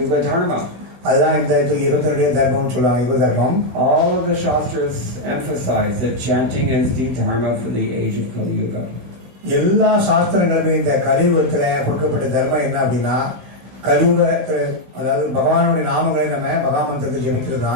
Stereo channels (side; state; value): left; late; 16 ms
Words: Dharma. அதுதான் இந்த 22 தர்மம் சொல்லுவாங்க, யுக தர்மம். All of the Shastras emphasize that chanting is the dharma for the age of Kali Yuga. எல்லா சாஸ்திரங்களுமே இந்த கலியுகத்துல கொடுக்கப்பட்ட தர்மம் என்ன அப்படின்னா, கலியுகத்துல அதாவது பகவானுடைய நாமங்களை நம்ம மகாமந்திரத்தை ஜெபிக்கிறது